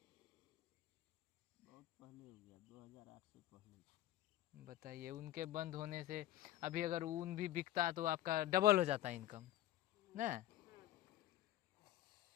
बहुत पहले हो गया, 2008 से पहले। बताइए, उनके बंद होने से अभी अगर ऊन भी बिकता तो आपका डबल हो जाता इनकम ना।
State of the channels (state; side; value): quieter; right; 14.1 dB